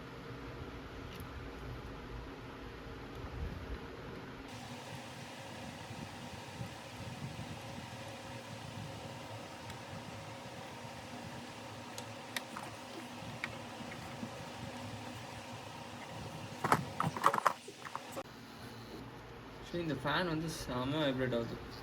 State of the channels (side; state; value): both; identical; correlation 1.00